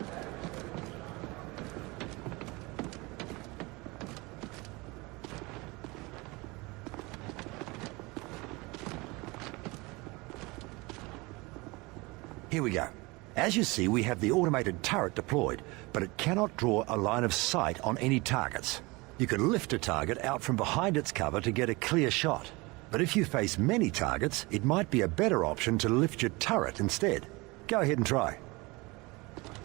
Here we go. As you see, we have the automated turret deployed, but it cannot draw a line of sight on any targets. You can lift a target out from behind its cover to get a clear shot. But if you face many targets, it might be a better option to lift your turret instead. Go ahead and try.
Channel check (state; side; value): quieter; left; 24.6 dB